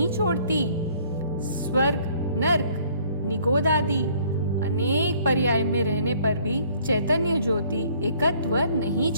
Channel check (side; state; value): both; inverted; correlation -0.59